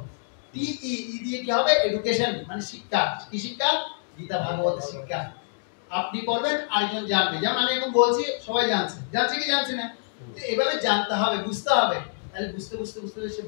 ই দিয়ে কি হবে? এডুকেশন, মানে শিক্ষা। কি শিক্ষা? গীতা ভাগবতের শিক্ষা। আপনি পড়বেন, আরেকজন জানবে। যেমন আমি এখন বলছি, সবাই জানছে। জানছে কি জানছে না? তো এভাবে জানতে হবে, বুঝতে হবে। তাহলে বুঝতে বুঝতে বুঝতে সে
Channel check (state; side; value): silent; right; digital silence